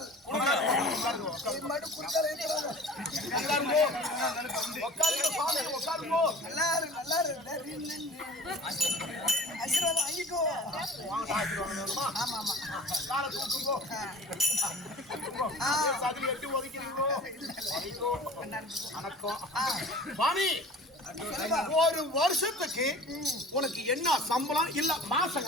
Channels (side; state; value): both; normal; correlation 0.44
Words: இது மட்டும் குறுக்கால் இருக்கிறாங்க. நல்லா இருக்கு, நல்லா இருக்கு. ஆசீர்வாதம் வாங்கிக்கோ. ஆமா ஆமா. காலை தூக்குங்கோ. சதில் எட்டு ஒதுக்கிறீங்களோ? வணக்கம் சுவாமி. ஒரு வருஷத்துக்கு உனக்கு என்ன சம்பளம்? இல்ல மாசம்